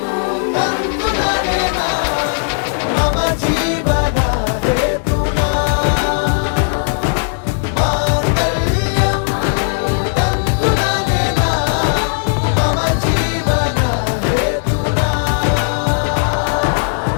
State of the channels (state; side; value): silent; right; digital silence